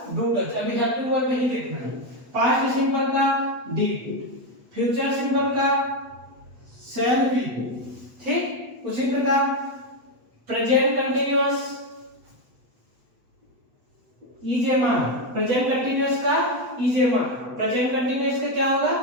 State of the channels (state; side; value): late; left; 8.1 ms